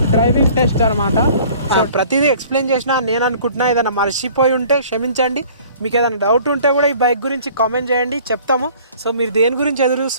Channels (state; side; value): inverted; both; correlation -0.51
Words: డ్రైవింగ్ టెస్ట్ అనమాట. సో ప్రతిదీ ఎక్స్ప్లెయిన్ చేసినా నేను అనుకుంటున్నా, ఏదైనా మర్చిపోయి ఉంటే క్షమించండి. మీకు ఏదైనా డౌట్ ఉంటే కూడా ఈ బైక్ గురించి కామెంట్ చేయండి, చెప్తాము. సో మీరు దేని గురించి ఎదురు